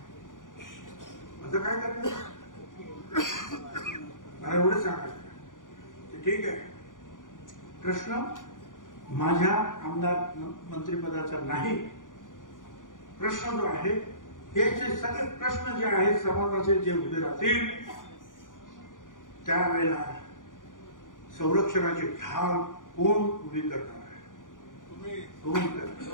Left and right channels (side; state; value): right; late; 0.88 ms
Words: असं काय करतो मला एवढं सांगायचं. ठीक आहे, प्रश्न माझ्या आमदार मंत्रिपदाचा नाही. प्रश्न जो आहे हे जे सगळे प्रश्न जे आहेत समाजाचे जे उभे राहतील त्यावेळेला संरक्षणाची ढाल कोण उभी करणार आहे, कोण करणार.